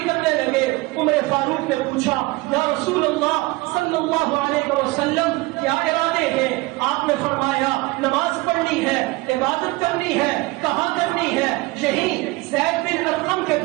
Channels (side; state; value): left; quieter; 22.5 dB